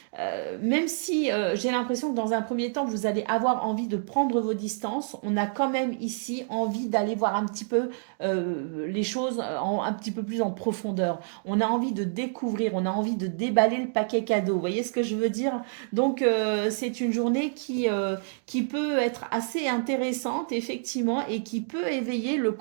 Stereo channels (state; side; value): silent; left; digital silence